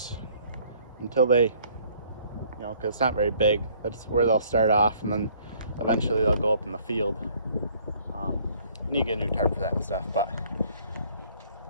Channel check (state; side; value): inverted; both; correlation -0.60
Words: until they, because it's not very big. That's where they'll start off, and then eventually they'll go up in the field. Need to get a new tarp for that and stuff, but